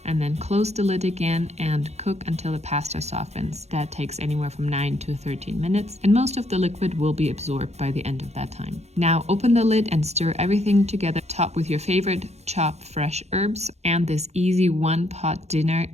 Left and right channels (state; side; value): late; left; 0.31 ms